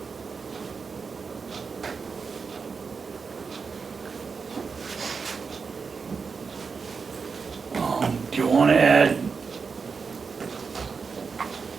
Do you want to add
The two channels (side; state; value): left; quieter; 5.2 dB